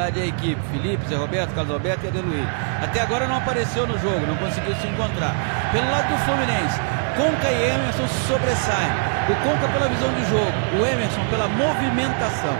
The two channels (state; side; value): silent; left; 64 dB below the other